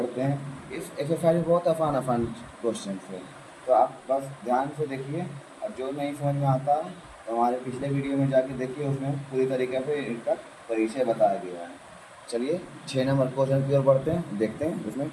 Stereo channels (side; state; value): both; identical; correlation 1.00